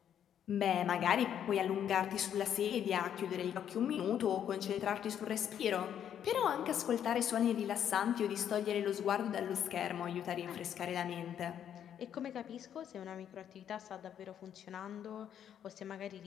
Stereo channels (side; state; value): right; quieter; 9.4 dB